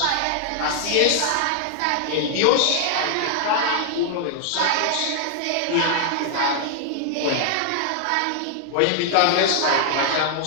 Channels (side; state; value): both; different; correlation 0.00